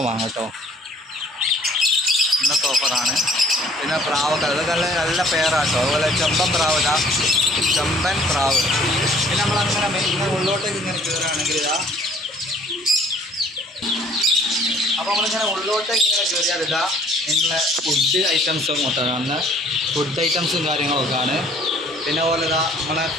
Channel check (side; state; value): both; normal; correlation 0.56